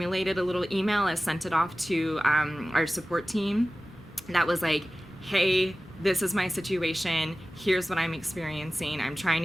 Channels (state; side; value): normal; both; correlation 0.97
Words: a little email. I sent it off to our support team that was like, hey, this is my situation, here's what I'm experiencing, I'm trying